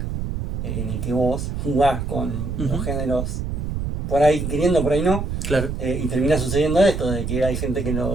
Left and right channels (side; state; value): right; noise; rumble, 3 dB below the sound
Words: en el que vos jugás con los Ujú. géneros, por ahí queriendo, por ahí no, Claro. y termina sucediendo esto, de que hay gente que